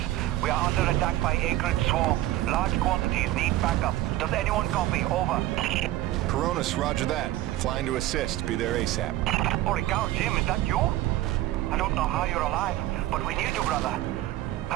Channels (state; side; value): quieter; left; 15.4 dB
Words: We are under attack by Acrid Swarm. Large quantities need backup. Does anyone copy? Over. Coronus, roger that. Flying to assist. Be there ASAP. Holy cow, Jim, is that you? I don't know how you're alive, but we need you, brother.